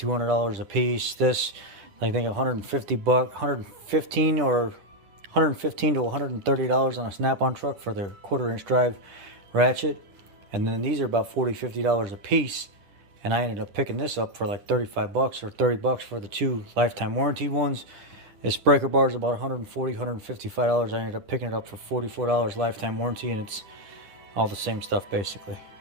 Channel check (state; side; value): late; left; 10 ms